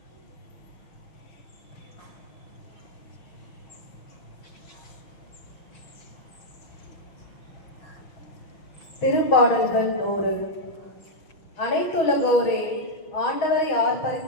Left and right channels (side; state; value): right; late; 6.2 ms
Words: திருப்பாடல்கள் 100. அனைத்துலகோரே, ஆண்டவரை